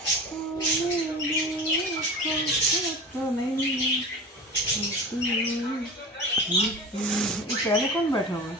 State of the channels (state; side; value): normal; both; correlation 0.33